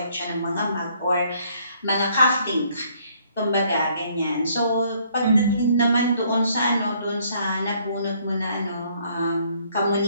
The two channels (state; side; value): inverted; both; correlation -0.65